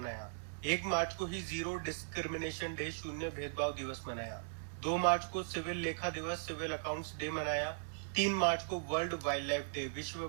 1 मार्च को ही जीरो डिस्क्रिमिनेशन डे, शून्य भेदभाव दिवस मनाया। 2 मार्च को सिविल लेखा दिवस, सिविल अकाउंट्स डे मनाया। 3 मार्च को वर्ल्ड वाइल्ड लाइफ डे, विश्व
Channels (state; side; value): silent; left; digital silence